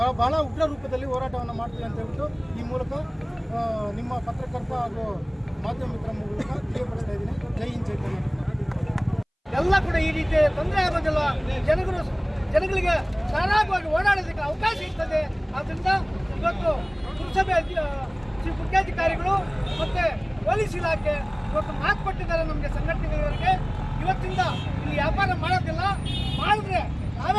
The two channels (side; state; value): both; identical; correlation 1.00